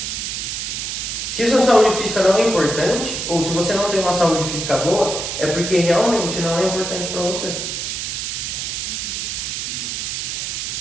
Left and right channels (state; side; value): noise; right; hiss, 3 dB below the sound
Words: Se a sua saúde física não é importante, ou se você não tem uma saúde física boa, é porque realmente não é importante para você.